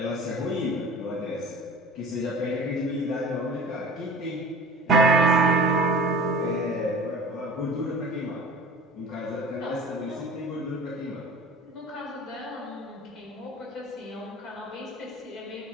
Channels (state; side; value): normal; both; correlation 0.41